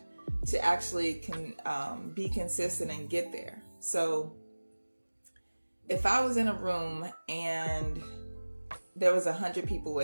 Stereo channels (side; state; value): both; inverted; correlation -1.00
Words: to actually be consistent and get there. So if I was in a room and there was 100 people